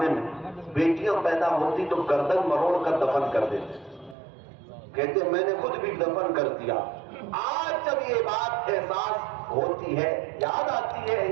میں بیٹیاں پیدا ہوتی تو گردن مروڑ کر دفن کر دیتے، کہتے میں نے خود بھی دفن کر دیا۔ آج جب یہ بات احساس ہوتی ہے، یاد آتی ہے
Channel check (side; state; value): left; drops out; at 4.2 s